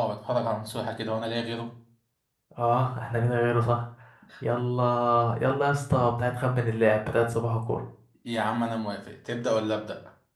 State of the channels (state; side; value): identical; both; correlation 1.00